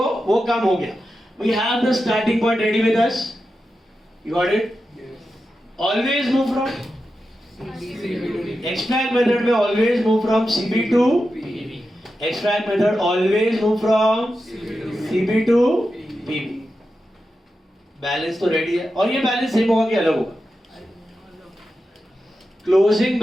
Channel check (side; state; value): both; normal; correlation 0.90